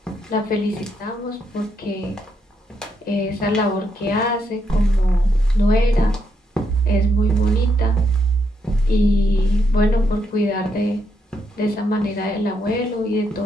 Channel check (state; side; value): normal; both; correlation 0.78